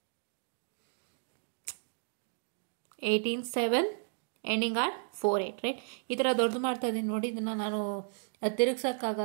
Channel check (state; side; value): silent; left; 55 dB below the other